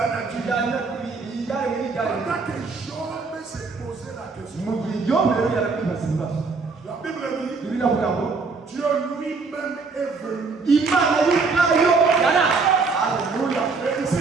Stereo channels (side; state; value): left; quieter; 4.4 dB